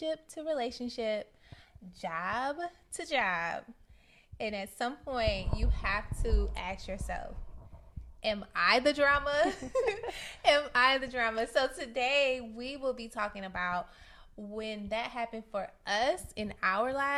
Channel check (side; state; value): both; identical; correlation 1.00